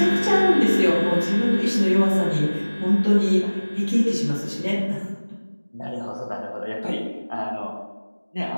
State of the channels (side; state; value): both; inverted; correlation -1.00